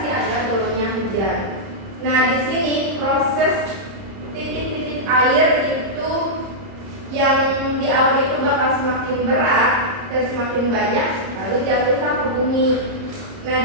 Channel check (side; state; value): left; late; 30 ms